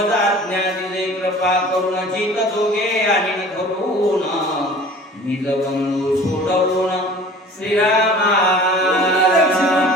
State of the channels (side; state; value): both; normal; correlation 0.44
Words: आज्ञा दिले कृपा करून चित दोघे आणि धरून निज बंधू सोडवून श्रीरामा